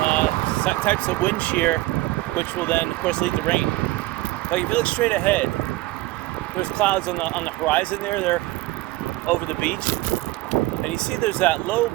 types of wind shear, which will then, of course, lead to rain. Like if you look straight ahead, there's clouds on the horizon there. They're over the beach, and you see there's that low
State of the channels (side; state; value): left; quieter; 18.8 dB